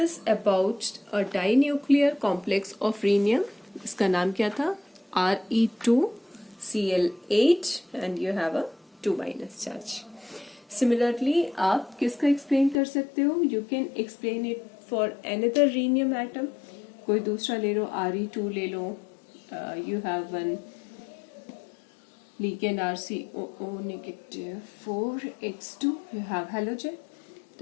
about a dinuclear complex of rhenium, इसका नाम क्या था, Re2Cl8 and you have a 2- charge. Similarly आप किसका एक्सप्लेन कर सकते हो, you can explain it for another rhenium atom, कोई दूसरा ले लो, Re2 ले लो, you have one ligand RCOO negative 4x2, you have halogen.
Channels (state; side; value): drops out; right; at 12.8 s